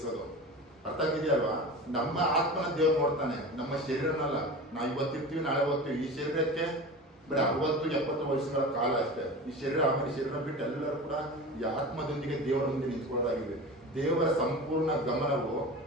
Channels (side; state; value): both; normal; correlation 0.32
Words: ಅರ್ಥ ಆಗಿದೆಯಲ್ವಾ? ನಮ್ಮ ಆತ್ಮನ ದೇವ್ರು ನೋಡ್ತಾನೆ, ನಮ್ಮ ಶರೀರನಲ್ಲ. ನಾವು ಇವತ್ತಿರ್ತೀವಿ, ನಾಳೆ ಹೋಗ್ತೀವಿ. ಈ ಶರೀರಕ್ಕೆ ಬರೀ 60-70 ವರ್ಷಗಳ ಕಾಲ ಅಷ್ಟೇ. ಈ ಶರೀರ ಆಮೇಲೆ ಶರೀರ ಬಿಟ್ಟು ಎಲ್ಲರೂ ಕೂಡ ಈ ಆತ್ಮದೊಂದಿಗೆ ದೇವರ ಮುಂದೆ ನಿಂತ್ಕೊಳ್ಳೋದಾಗಿದೆ. ದೇವರ ಸಂಪೂರ್ಣ ಗಮನವು